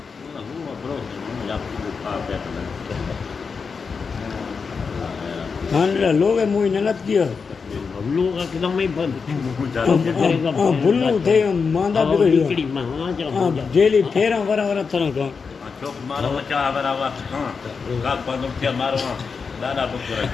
हाँ लोग है मुझे नलत किया लोग एकदम ही बंद बुल्लू थे मांदा बिगड़ी हाँ जेली फेरा वरा वरा तरह का चौक मारो बच्चा बराबर हाँ का बंद थे मारो दादा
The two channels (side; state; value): right; quieter; 5.3 dB